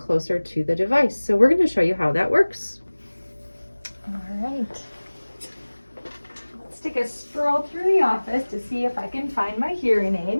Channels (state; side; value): inverted; both; correlation -1.00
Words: to the device. So we're going to show you how that works. All right. Let's take a stroll through the office to see if I can find my hearing